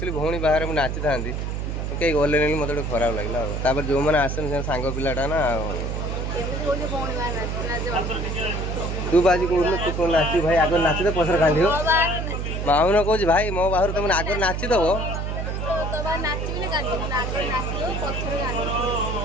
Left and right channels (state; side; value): noise; right; hum, 3 dB below the sound